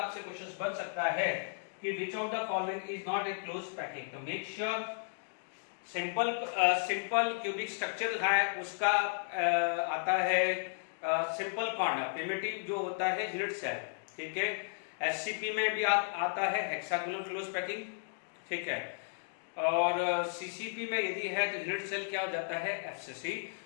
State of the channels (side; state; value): right; silent; digital silence